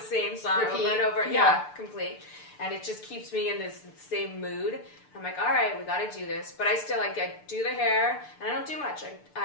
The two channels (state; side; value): late; right; 6.8 ms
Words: same song over and over. Yeah, complete. And it just keeps me in this same mood. I'm like, all right, we got to do this. But I still I do the hair, and I don't do much.